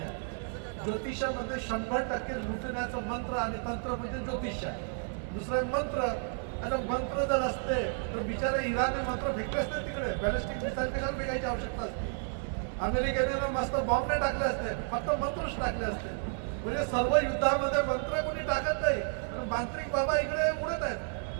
ज्योतिषामध्ये 100% लुटण्याचं मंत्र आणि तंत्र म्हणजे ज्योतिष आहे. दुसरं मंत्र, आता मंत्र जर असते तर बिचारे इराणने मंत्र फेकले असते तिकडे, बॅलिस्टिक मिसाईल कशाला फेकायची आवश्यकता असते. अमेरिकेने मस्त बॉम्ब नाही टाकले असते, फक्त मंत्रच टाकले असते. म्हणजे सर्व युद्धामध्ये मंत्र कोणी टाकत नाही, पण मांत्रिक बाबा इकडे उडत आहेत.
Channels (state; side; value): silent; left; 57 dB below the other